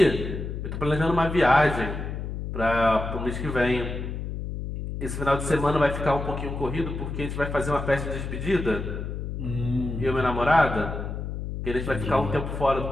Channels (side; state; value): left; noise; hum, 5 dB below the sound